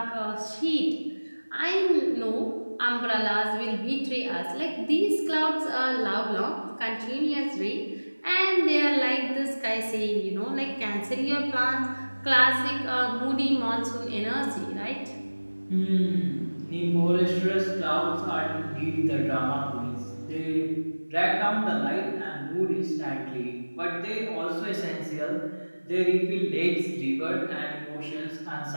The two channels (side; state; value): both; inverted; correlation -1.00